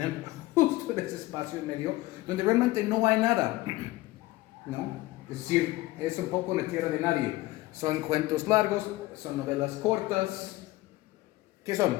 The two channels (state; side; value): quieter; right; 18.6 dB